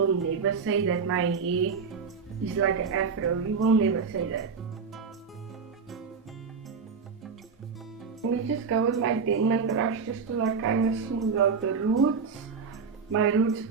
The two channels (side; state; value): left; quieter; 5.5 dB